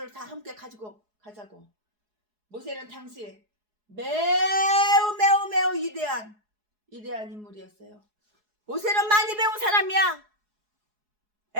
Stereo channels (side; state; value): left; late; 4.7 ms